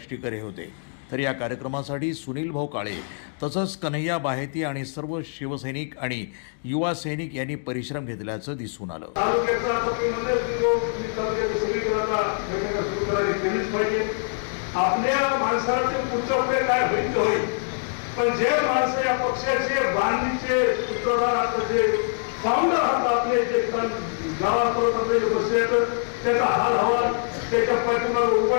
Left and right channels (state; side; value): silent; right; digital silence